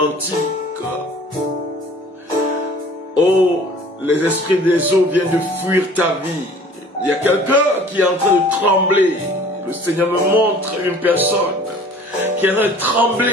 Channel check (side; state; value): both; normal; correlation 0.49